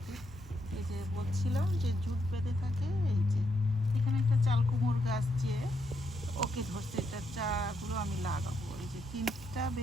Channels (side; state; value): both; normal; correlation 0.79